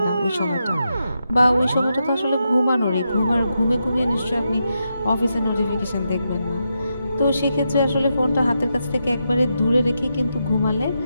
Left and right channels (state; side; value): inverted; both; correlation -0.85